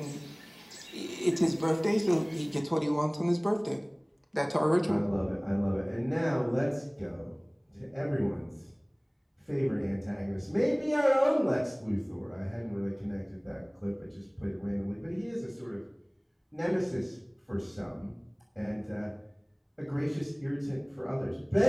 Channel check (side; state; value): both; identical; correlation 1.00